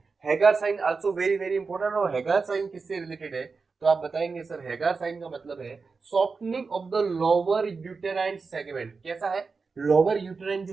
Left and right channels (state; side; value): quieter; left; 4.6 dB